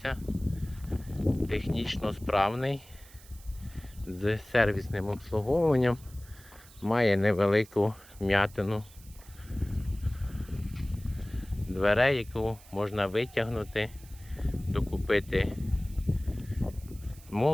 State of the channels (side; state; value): right; noise; hiss, 22 dB below the sound